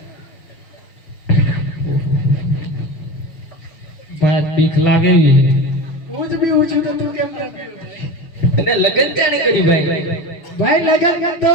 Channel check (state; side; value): late; right; 6.1 ms